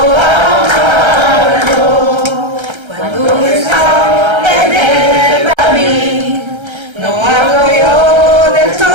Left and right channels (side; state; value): left; late; 1.3 ms